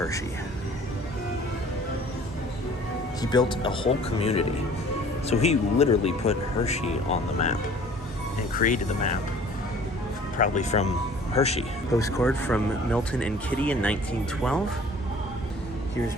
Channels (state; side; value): normal; both; correlation 0.50